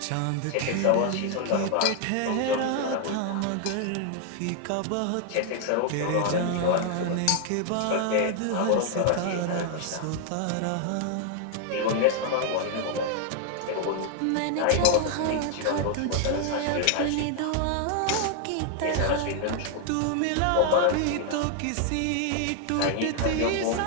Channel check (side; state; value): both; different; correlation 0.00